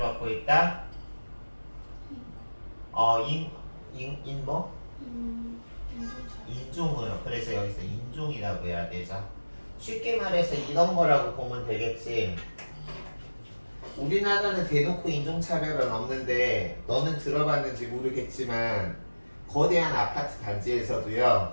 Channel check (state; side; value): inverted; both; correlation -1.00